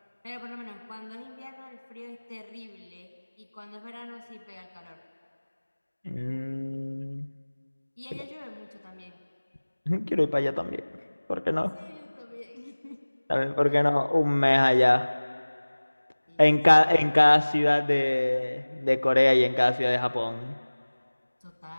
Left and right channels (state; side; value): inverted; both; correlation -1.00